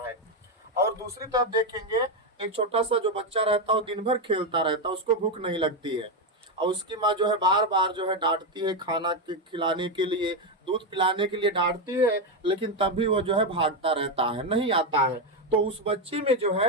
है। और दूसरी तरफ देखेंगे, एक छोटा सा जो बच्चा रहता है वो दिन भर खेलता रहता है, उसको भूख नहीं लगती है और उसकी माँ जो है बार बार जो है डांटती है, खाना खिलाने के लिए, दूध पिलाने के लिए डांटती है, लेकिन तब भी वो जो है भागता रहता है, नहीं आता है। तो उस बच्चे में जो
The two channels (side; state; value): both; normal; correlation 0.08